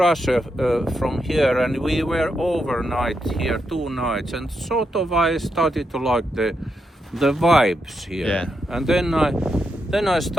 from here, and we were overnight here 2 nights, and sort of I started to like the vibes here. Yeah. And then I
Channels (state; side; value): normal; both; correlation 0.83